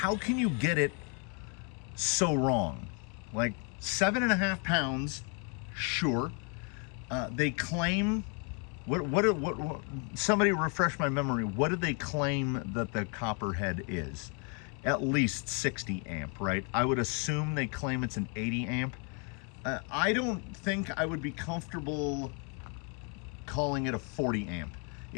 get it so wrong? Like 7.5 pounds, sure. They claim, what somebody refresh my memory, what did they claim that the Copperhead is? At least 60 amp, right? I would assume they claim it's an 80 amp. I don't think I would be comfortable calling it a 40 amp.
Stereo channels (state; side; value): quieter; right; 37.1 dB